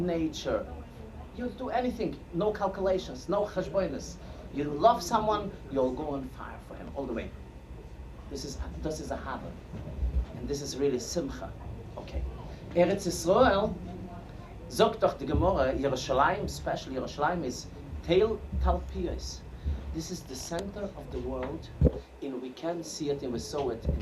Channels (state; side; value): identical; both; correlation 1.00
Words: You'll do anything, no calculations, no cheshbonis. You love someone, you'll go on fire for him all the way. This is Ahava. And this is really Simcha. Okay. Eretz Yisrael, sagt doch die Gemara, Yerushalayim, especially Yerushalayim, is Teil Talpiyos. This is the center of the world, and we can see it, and we saw it in